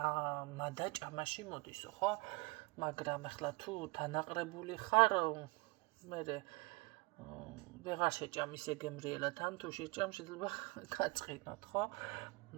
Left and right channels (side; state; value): left; quieter; 24.6 dB